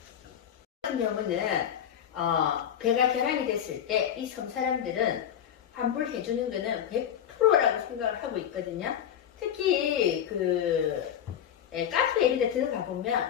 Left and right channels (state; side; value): quieter; right; 9.5 dB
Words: 같은 경우는 배가 결항이 됐을 때 이 섬 사람들은 환불해 주는 거는 100%라고 생각을 하고 있거든요. 특히 카페 이런 데 들어가